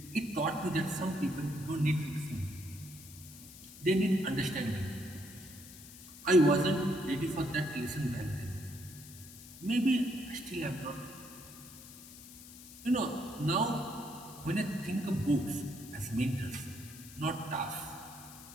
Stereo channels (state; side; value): noise; left; hiss, 16 dB below the sound